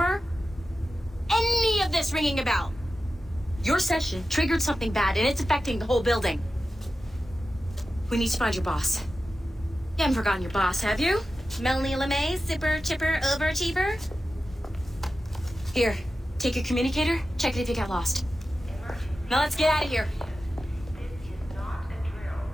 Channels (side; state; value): both; normal; correlation 0.93